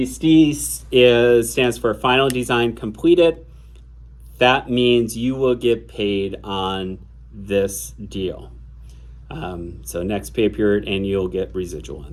stands for Final Design Completed. That means you will get paid on this deal. So next pay period, and you'll get residual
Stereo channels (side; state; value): both; identical; correlation 1.00